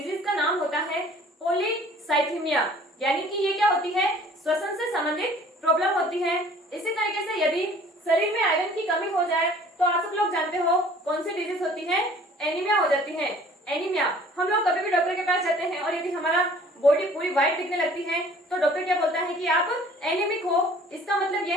का नाम होता है पॉलीसाइथीमिया, यानी कि ये क्या होती है, श्वसन से संबंधित प्रॉब्लम होती है। इसी तरीके से यदि शरीर में आयरन की कमी हो जाए तो आप सब लोग जानते हो कौन सी डिजीज होती है, एनीमिया हो जाती है। एनीमिया, हम लोग कभी भी डॉक्टर के पास जाते हैं और यदि हमारा बॉडी पूरी व्हाइट दिखने लगती है तो डॉक्टर क्या बोलता है कि आप एनीमिक हो। इसका मतलब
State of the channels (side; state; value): both; normal; correlation 0.52